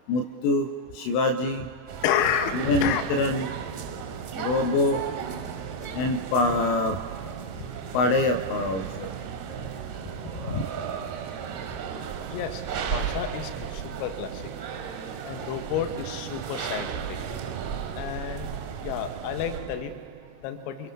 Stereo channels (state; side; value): late; right; 32 ms